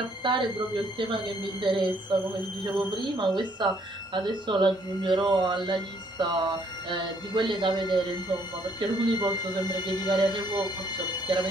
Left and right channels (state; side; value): normal; both; correlation 0.66